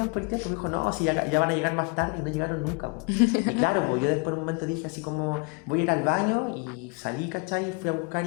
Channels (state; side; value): quieter; right; 31.1 dB